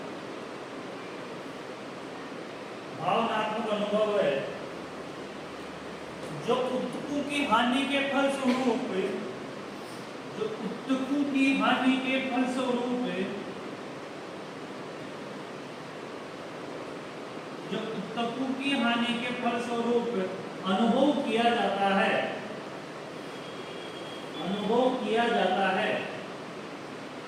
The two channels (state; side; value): identical; both; correlation 1.00